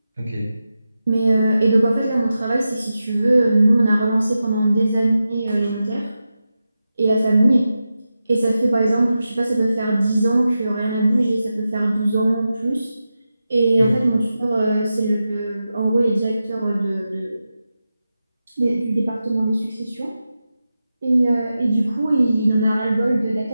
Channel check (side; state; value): both; inverted; correlation -0.91